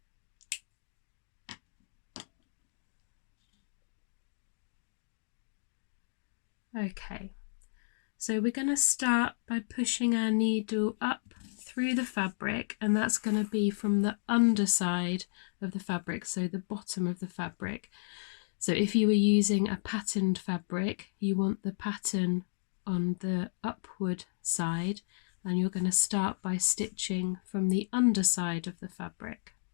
Okay, so we're going to start by pushing our needle up through the fabric, and that's going to be from the underside of the fabric, so the bottom of the fabric. So if you were using a patterned fabric, you want the pattern on the upward side, and you're going to start by stitching from the underside of the fabric.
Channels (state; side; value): silent; right; digital silence